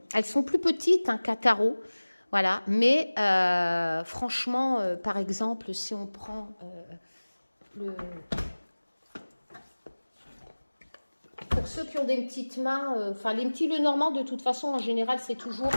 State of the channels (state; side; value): inverted; both; correlation -1.00